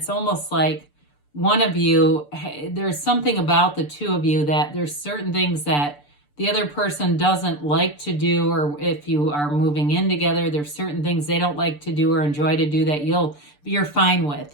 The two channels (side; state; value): right; late; 6.8 ms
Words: almost like one of you, there's something about the two of you that there's certain things that the other person doesn't like to do, or if you are moving in together, there's certain things they don't like to do or enjoy to do that you're fine with.